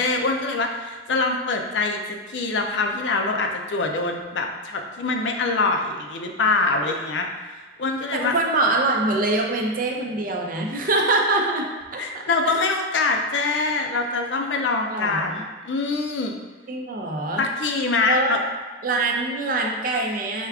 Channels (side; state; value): both; normal; correlation 0.05